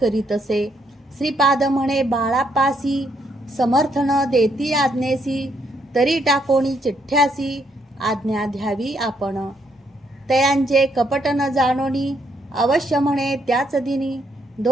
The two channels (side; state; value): both; normal; correlation 0.73